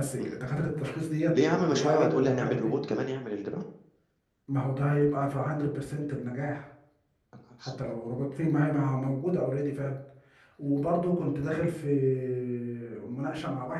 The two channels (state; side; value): identical; both; correlation 1.00